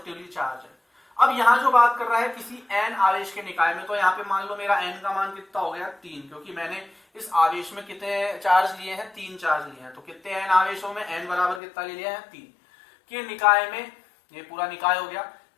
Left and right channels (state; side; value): drops out; right; at 11.6 s